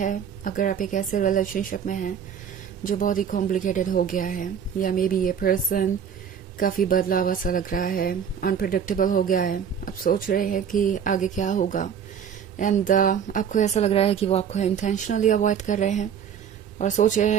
अगर आप एक ऐसे रिलेशनशिप में हैं जो बहुत ही कॉम्प्लिकेटेड हो गया है, या मे बी ये पर्सन काफ़ी बदलावा सा लग रहा है, अनप्रिडिक्टेबल हो गया है। आप सोच रहे हैं कि आगे क्या होगा एंड आपको ऐसा लग रहा है कि वो आपको इंटेंशनली अवॉइड कर रहे हैं और सोच रहे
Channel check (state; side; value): quieter; left; 7.8 dB